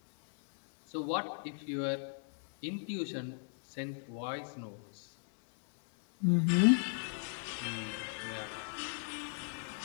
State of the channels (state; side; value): silent; right; digital silence